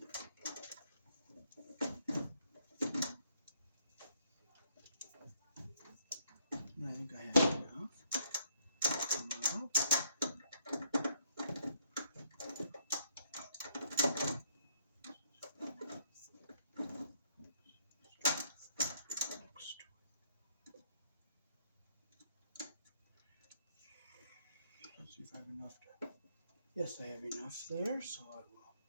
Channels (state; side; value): inverted; both; correlation -0.68